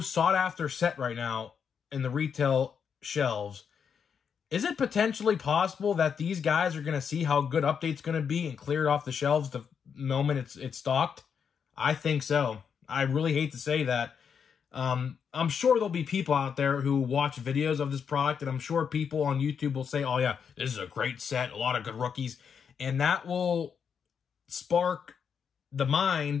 set right now in the retail shelves, is it potentially possible that these guys are going to see how good Update's going to be and clear it off the shelves the moment it's stocked? I think so. I really hate to say that. I'm sure there'll be people out there who watch videos of this product, and I'm sure people on YouTube will say, oh yeah, this is a great set, a lot of good rookies, and that will spark the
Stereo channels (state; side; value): quieter; right; 6.9 dB